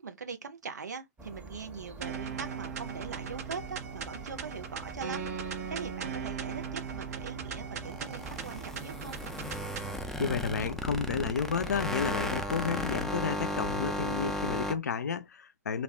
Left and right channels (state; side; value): normal; both; correlation -0.11